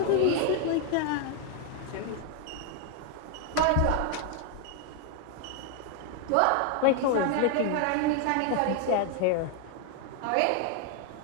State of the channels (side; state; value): both; different; correlation 0.01